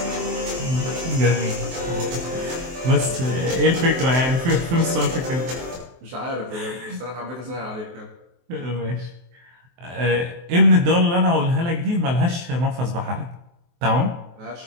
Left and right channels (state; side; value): late; left; 23 ms